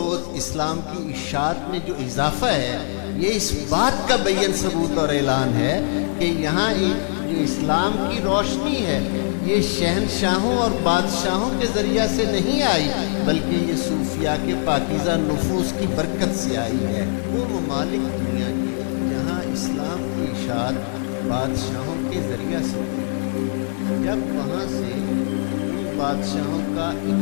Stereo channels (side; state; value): right; silent; digital silence